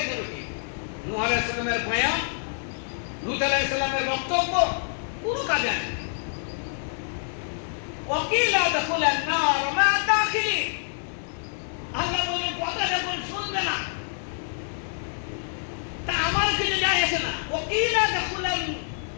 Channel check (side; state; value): right; silent; digital silence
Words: নূহ আলাইহিস সালামের বয়ান, লূত আলাইহিস সালামের বক্তব্য কোনো কাজে আসেনি। ওয়াকিলা দাখুলান নার মা দাখিলিন, আল্লাহ বলেন কথা যখন শুনবে না তা আমার কিছু যায় আসে না। ওয়াকিলা